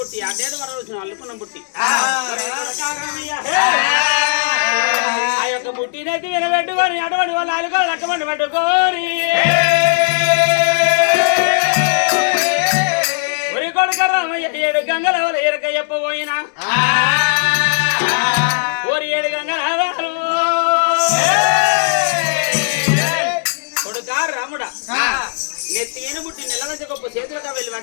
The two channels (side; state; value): right; silent; digital silence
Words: అడ్డేడు వరాలు వచ్చిన అల్లుకున్న బుట్టి ఆ యొక్క బుట్టినైతే వినబెట్టుకొని అటువంటి వాళ్ళు అలుకో లక్కమండి పట్టుకోని ఒరి కొడుక రామయ్య ఏడు గంగల వల్ల ఎరక చెప్పబోయినా ఓరి ఏడు గంగల కొడుకా రాముడా నెత్తిన బుట్టి నెలవంచ గొప్ప చేతులుగా వెళ్ళి